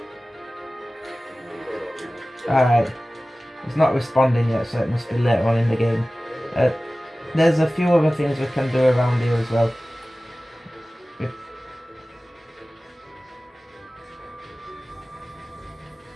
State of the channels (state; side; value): normal; both; correlation 0.97